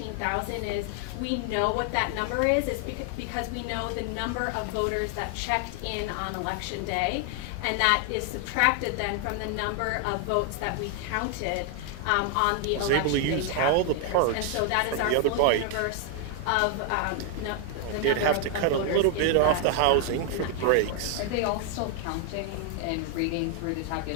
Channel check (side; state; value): both; different; correlation 0.00